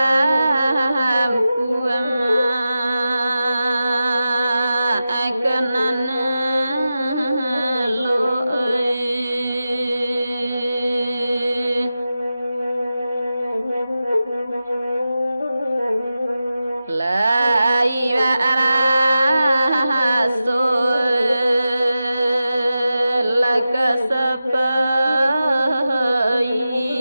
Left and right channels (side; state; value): both; inverted; correlation -0.92